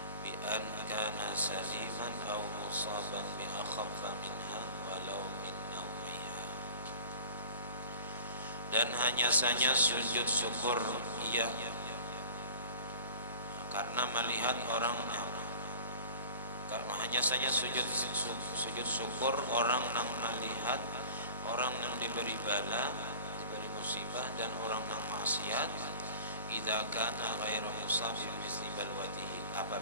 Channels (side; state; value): both; inverted; correlation -0.41